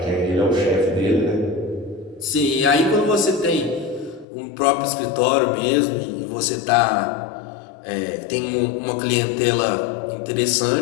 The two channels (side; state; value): right; drops out; at 4.2 s